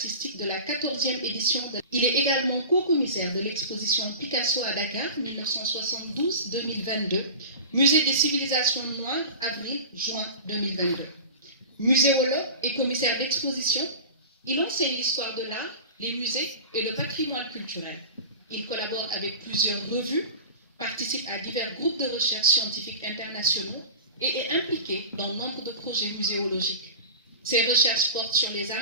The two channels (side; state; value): both; inverted; correlation -0.33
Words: de la 14e édition. Il est également co-commissaire de l'exposition Picasso à Dakar 1972-2022, Musée des civilisations noires, avril-juin 2022. Muséologue et commissaire d'exposition, il enseigne l'histoire de l'art, les musées et le patrimoine culturel. Il collabore avec plusieurs revues, participe à divers groupes de recherche scientifiques internationaux et est impliqué dans nombre de projets muséologiques. Ses recherches portent sur les